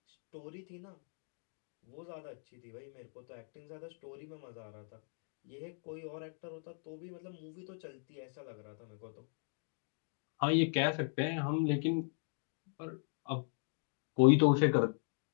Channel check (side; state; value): right; silent; 52 dB below the other